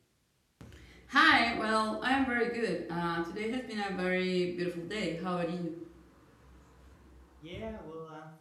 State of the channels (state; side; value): identical; both; correlation 1.00